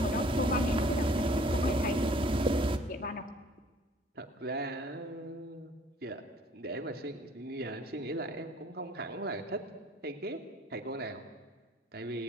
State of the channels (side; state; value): both; normal; correlation 0.55